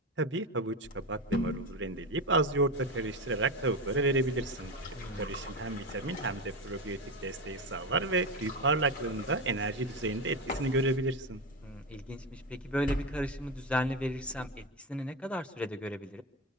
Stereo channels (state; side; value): normal; both; correlation 0.17